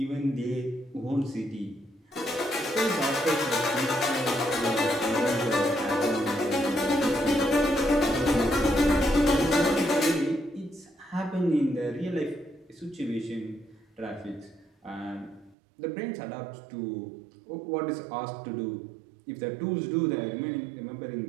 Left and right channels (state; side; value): drops out; left; at 15.6 s